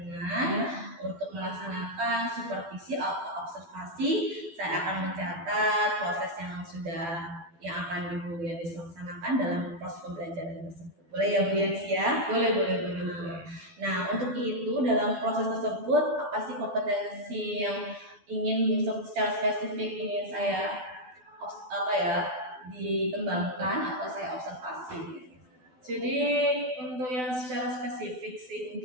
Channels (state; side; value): late; left; 12 ms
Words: untuk melaksanakan supervisi atau observasi. Saya akan mencatat proses yang akan Ibu Yanis laksanakan dalam proses pembelajaran tersebut. Boleh ya Bu Yanis ya? Boleh. Nah, untuk itu dalam proses tersebut apa sih kompetensi yang ingin secara spesifik ingin saya dikembangkan atau saya observasi? Jadi untuk yang secara spesifik sih,